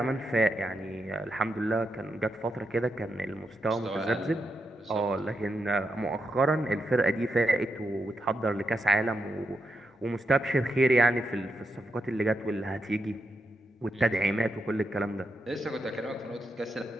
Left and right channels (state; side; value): normal; both; correlation 0.85